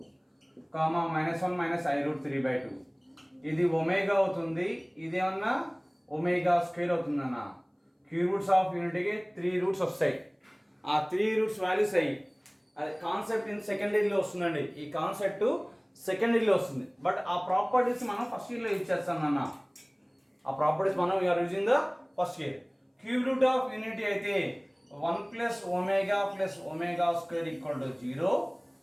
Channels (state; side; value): identical; both; correlation 1.00